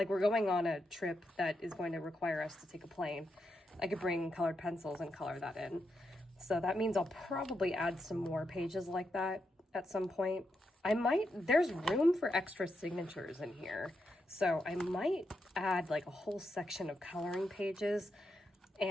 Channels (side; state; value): both; normal; correlation 0.84